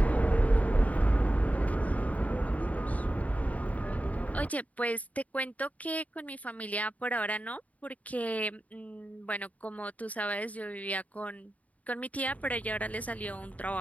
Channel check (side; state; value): right; late; 0.070 ms